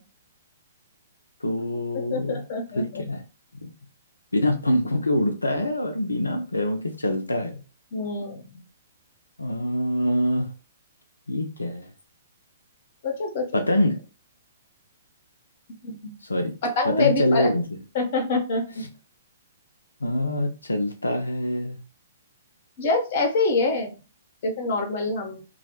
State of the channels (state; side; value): inverted; both; correlation -0.67